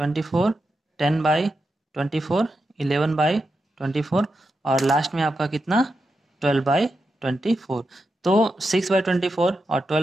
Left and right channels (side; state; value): both; normal; correlation 0.88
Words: 10/24, 11/24, और लास्ट में आपका कितना 12/24। तो 6/24 और